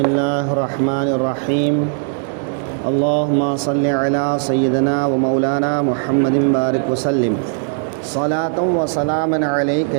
الرحمن الرحیم اللہم صلی علی سیدنا و مولانا محمد بارک وسلم صلاۃ و سلام علیک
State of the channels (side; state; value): left; silent; digital silence